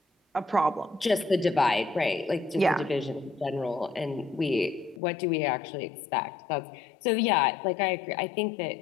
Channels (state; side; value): drops out; right; at 5.0 s